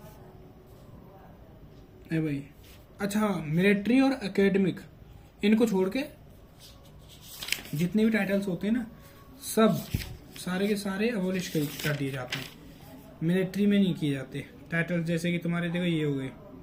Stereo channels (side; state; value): both; identical; correlation 1.00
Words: अरे भाई अच्छा, मिलिट्री और एकेडमिक, इनको छोड़ के जितने भी टाइटल्स होते हैं ना, सब सारे के सारे अबोलिश कर दिए जाते हैं। मिलिट्री में नहीं किए जाते टाइटल्स, जैसे कि तुम्हारे देखो ये हो गए